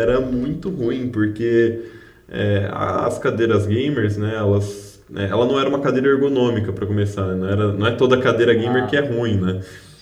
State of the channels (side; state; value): both; identical; correlation 1.00